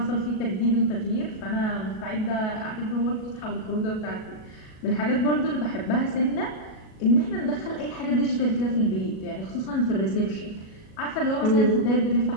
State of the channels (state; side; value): late; right; 37 ms